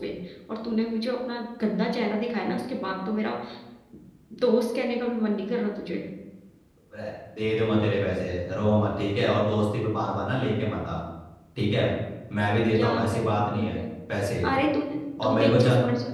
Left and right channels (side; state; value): both; identical; correlation 1.00